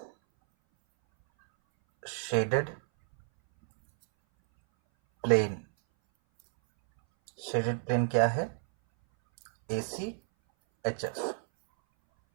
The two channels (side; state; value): left; silent; 58 dB below the other